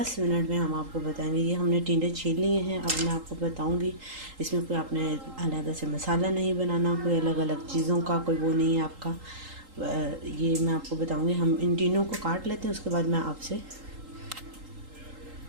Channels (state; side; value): late; left; 3.8 ms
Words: मिनट में हम आपको बताएंगे। ये हमने टिंडे छील लिए हैं, अब मैं आपको बताऊंगी। इसमें कोई आपने अलग से मसाला नहीं बनाना, कोई अलग अलग चीज़ों का कोई वो नहीं है आपका। ये मैं आपको बताऊंगी। हम इन टिंडों को काट लेते हैं, उसके बाद मैं आपसे